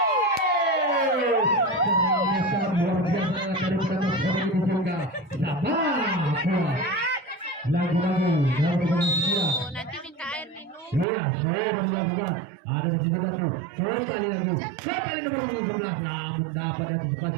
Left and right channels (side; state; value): left; drops out; at 11.1 s